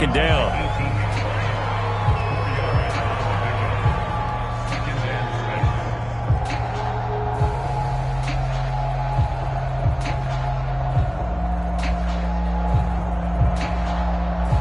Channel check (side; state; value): both; identical; correlation 1.00